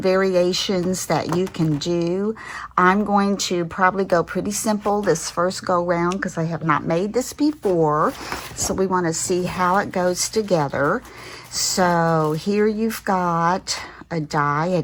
variations that you can do. I'm going to probably go pretty simple this first go round because I have not made this before. So we want to see how it goes together. So here you've got a die, an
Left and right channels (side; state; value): both; identical; correlation 1.00